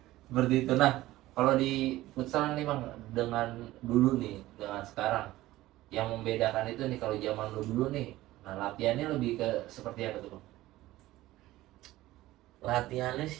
Seperti itu. Nah, kalau di futsal nih bang, dengan dulu nih, dengan sekarang, yang membedakan itu nih kalau zaman dulu nih, nah latihannya lebih ke seperti apa tuh bang? Latihannya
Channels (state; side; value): quieter; left; 16.6 dB